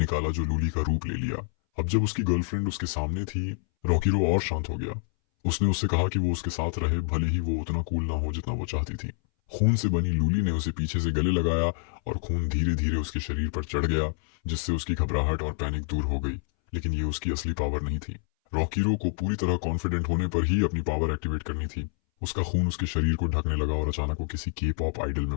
जो लूली का रूप ले लिया। अब जब उसकी गर्लफ्रेंड उसके सामने थी, रॉकीरो और शांत हो गया। उसने उससे कहा कि वो उसके साथ रहे, भले ही वो उतना कूल ना हो जितना वो चाहती थी। खून से बनी लूली ने उसे पीछे से गले लगाया और खून धीरे धीरे उसके शरीर पर चढ़ गया, जिससे उसकी घबराहट और पैनिक दूर हो गई। लेकिन ये उसकी असली पावर नहीं थी। रॉकीरो को पूरी तरह कॉन्फिडेंट होने पर ही अपनी पावर एक्टिवेट करनी थी। उसका खून उसके शरीर को ढकने लगा और अचानक वो किसी के पॉप आइडल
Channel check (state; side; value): silent; right; 60 dB below the other